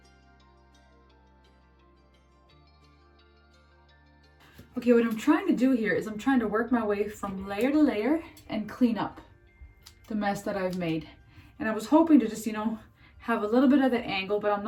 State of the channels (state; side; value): identical; both; correlation 1.00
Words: Okay, what I'm trying to do here is I'm trying to work my way from layer to layer and clean up the mess that I've made. And I was hoping to just, have a little bit of that angle, but I'm